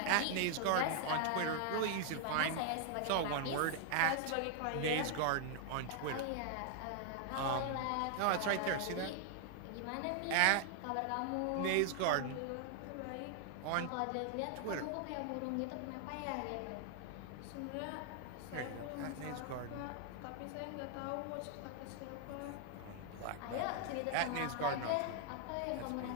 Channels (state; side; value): different; both; correlation 0.00